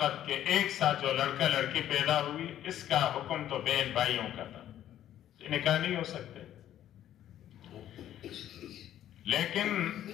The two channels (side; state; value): right; quieter; 11.7 dB